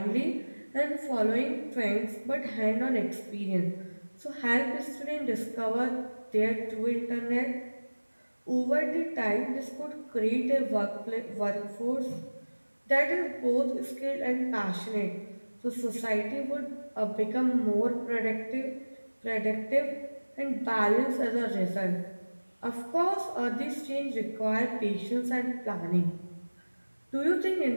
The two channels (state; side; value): inverted; both; correlation -1.00